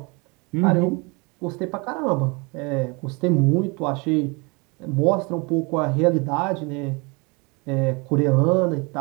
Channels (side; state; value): left; quieter; 29.2 dB